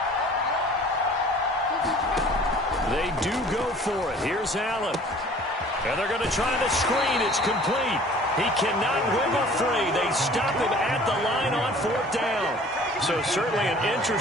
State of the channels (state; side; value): normal; both; correlation 0.49